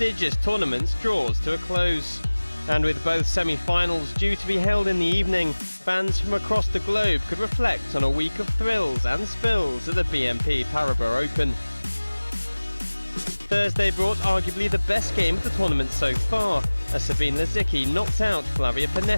tournaments draws to a close. And with both semi-finals due to be held in the evening, fans from across the globe could reflect on a week of thrills and spills at the BNP Paribas Open. Thursday brought arguably the best game of the tournament so far, as Sabine Lisicki knocked out Flavia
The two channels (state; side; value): inverted; both; correlation -1.00